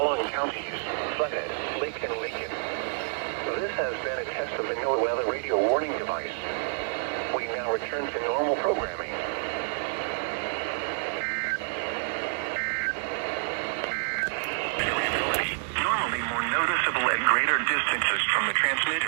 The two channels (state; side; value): silent; left; 57 dB below the other